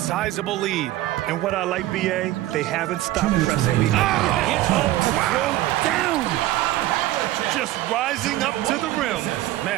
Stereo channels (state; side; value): quieter; left; 15.5 dB